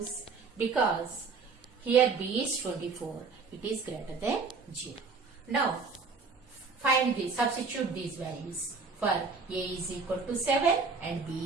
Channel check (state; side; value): quieter; left; 4.7 dB